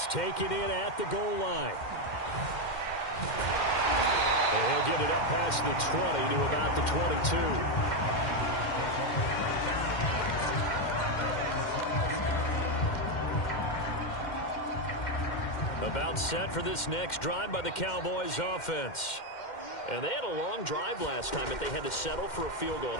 taken in at the goal line. And he'll get it up past the 20 to about the 22. About set for this next drive by the Cowboys offense. And they had a long drive last time, but they had to settle for a field goal,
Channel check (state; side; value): late; right; 2.1 ms